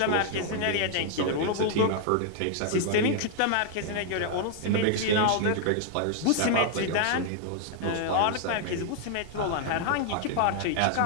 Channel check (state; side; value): different; both; correlation 0.00